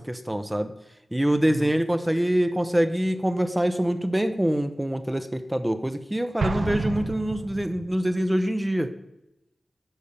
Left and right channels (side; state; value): both; normal; correlation 0.98